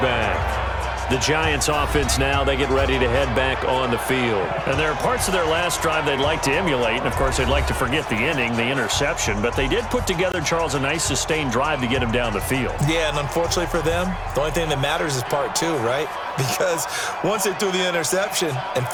The Giants offense now, they get ready to head back on the field. And there are parts of their last drive they'd like to emulate, and of course they'd like to forget the ending, the interception, but they did put together, Charles, a nice sustained drive to get him down the field. Yeah, and unfortunately for them, the only thing that matters is part two, right? Because once they threw the interception and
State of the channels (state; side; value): identical; both; correlation 1.00